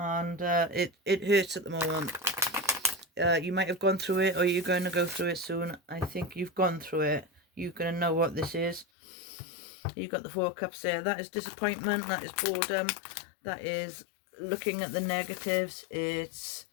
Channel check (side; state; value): right; drops out; at 8.8 s